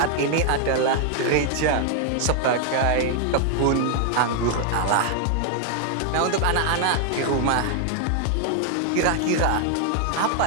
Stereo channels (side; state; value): both; different; correlation 0.00